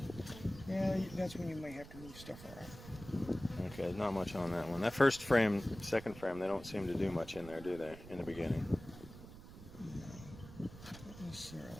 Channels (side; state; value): right; noise; rumble, 15 dB below the sound